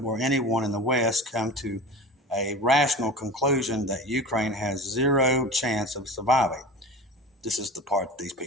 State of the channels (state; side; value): normal; both; correlation 0.33